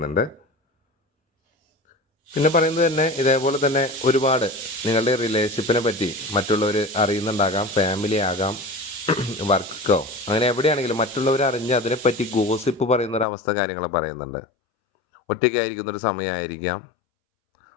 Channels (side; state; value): right; drops out; at 13.2 s